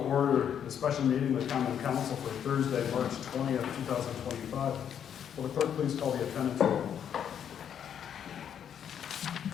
order the special meeting of the Common Council for Thursday, March 20th, 2025. Will the clerk please call the attendance roll?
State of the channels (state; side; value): quieter; right; 8.8 dB